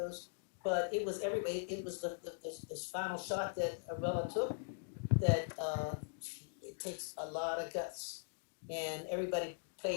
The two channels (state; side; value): silent; right; digital silence